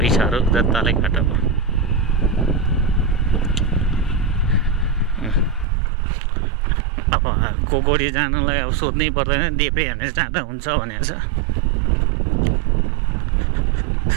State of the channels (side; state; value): left; drops out; at 5.7 s